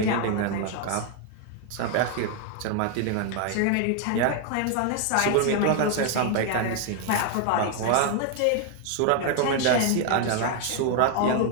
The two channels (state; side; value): different; both; correlation 0.01